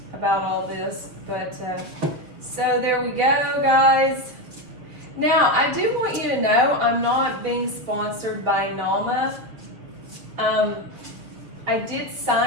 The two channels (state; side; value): late; left; 6.7 ms